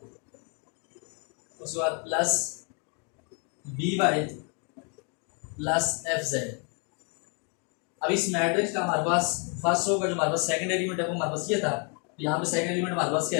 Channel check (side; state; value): right; quieter; 37.6 dB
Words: उसके बाद plus B Y plus F Z. अब इस मैट्रिक्स का हमारे पास फर्स्ट रो का जो हमारे पास सेकंड एलिमेंट है वो हमारे पास ये था, तो यहाँ पे सेकंड एलिमेंट हमारे पास क्या